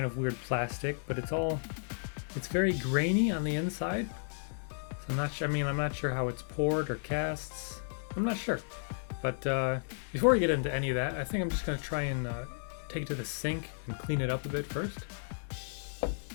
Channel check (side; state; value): right; silent; digital silence